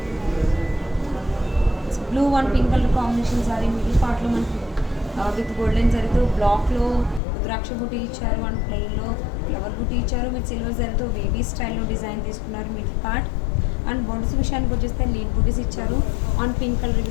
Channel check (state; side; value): drops out; right; at 7.2 s